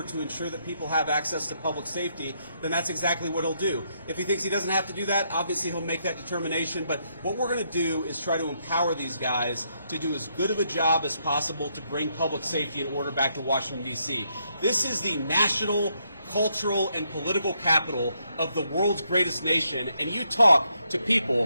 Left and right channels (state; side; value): inverted; both; correlation -0.76